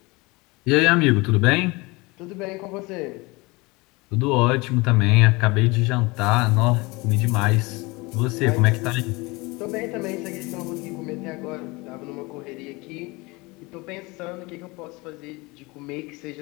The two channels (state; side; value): quieter; right; 24.6 dB